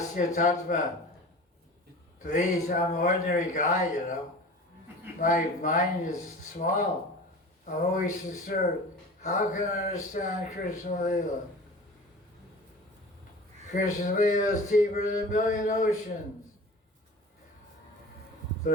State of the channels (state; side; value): normal; both; correlation 0.38